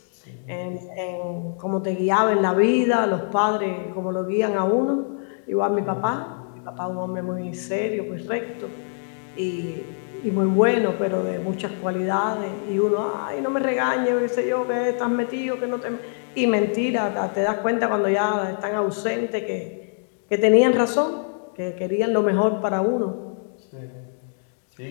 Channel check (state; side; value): silent; right; digital silence